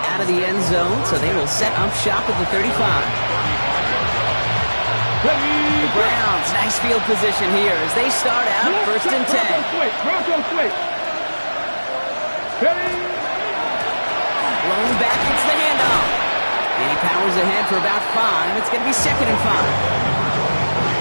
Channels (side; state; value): both; inverted; correlation -1.00